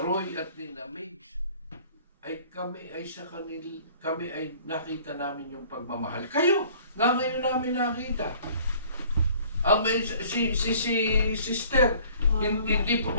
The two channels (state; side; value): inverted; both; correlation -0.53